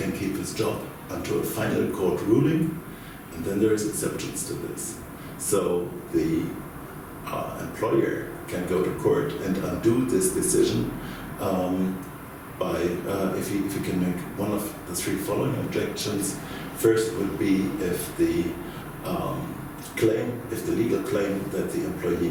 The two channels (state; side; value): identical; both; correlation 1.00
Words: keep his job until a final court ruling, and then there is exceptions to this. So the employer can go to court and undo this decision by if he can make one of the three following objections. First would be if the legal claim that the